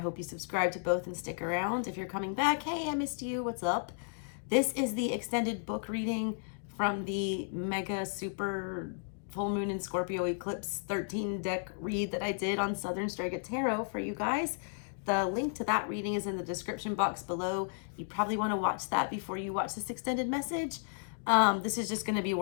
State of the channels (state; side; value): silent; right; digital silence